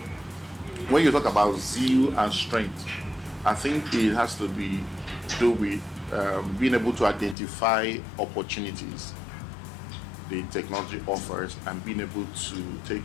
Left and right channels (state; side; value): drops out; right; at 7.4 s